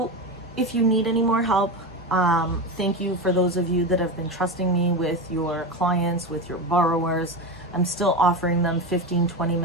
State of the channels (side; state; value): both; normal; correlation 0.19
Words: if you need any more help, thank you for those of you that have been trusting me with your clients, with your borrowers. I'm still offering them 15,